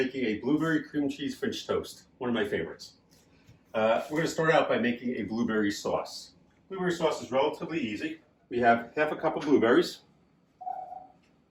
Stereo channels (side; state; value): both; identical; correlation 1.00